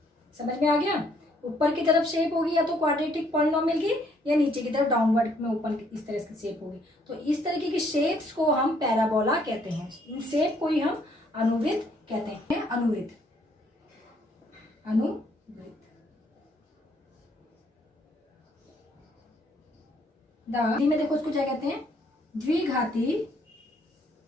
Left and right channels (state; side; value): normal; both; correlation 0.67